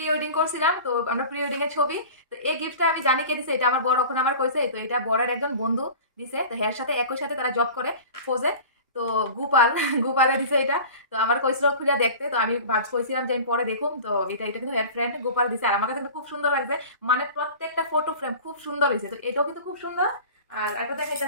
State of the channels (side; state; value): both; inverted; correlation -0.38